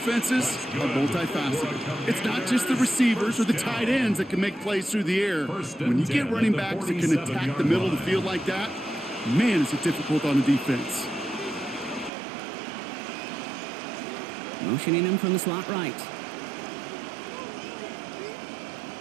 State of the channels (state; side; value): drops out; left; at 12.1 s